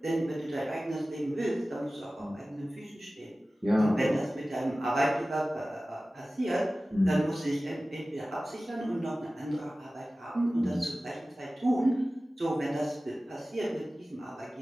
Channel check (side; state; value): both; normal; correlation 0.96